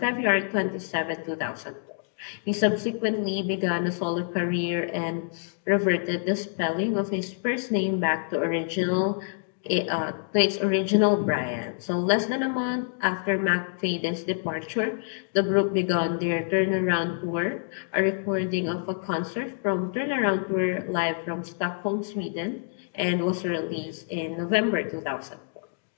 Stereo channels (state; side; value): silent; right; digital silence